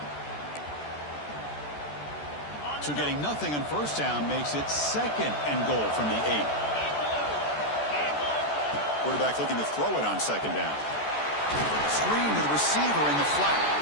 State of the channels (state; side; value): late; right; 14 ms